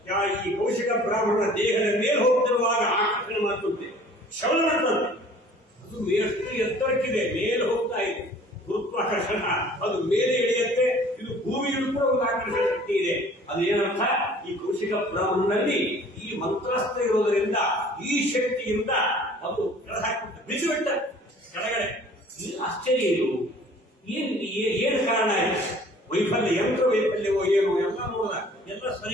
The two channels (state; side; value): normal; both; correlation 0.51